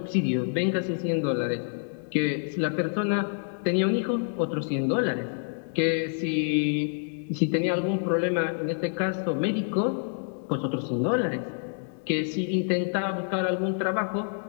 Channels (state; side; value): silent; right; digital silence